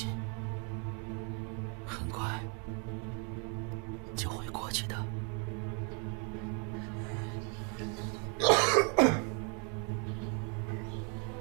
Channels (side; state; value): left; quieter; 37.1 dB